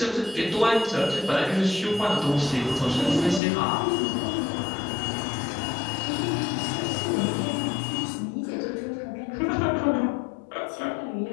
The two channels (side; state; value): right; drops out; at 3.4 s